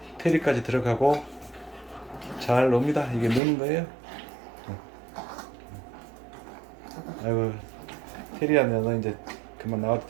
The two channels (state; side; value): drops out; left; at 3.4 s